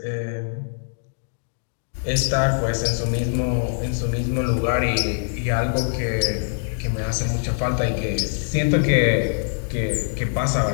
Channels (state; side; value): silent; right; digital silence